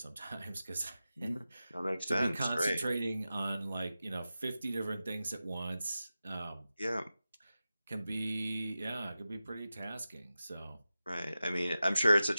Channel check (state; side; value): inverted; both; correlation -0.93